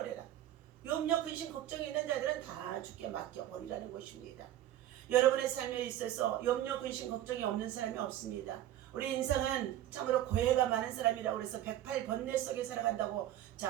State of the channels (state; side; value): quieter; left; 12.7 dB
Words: 염려, 근심, 걱정이 있는 자들은 다 주께 맡겨 버리라는 것입니다. 여러분의 삶에 있어서 염려, 근심, 걱정이 없는 사람이 없습니다. 우리 인생은 참으로 고해가 많은 사람이라고 해서 108번뇌 속에 살아간다고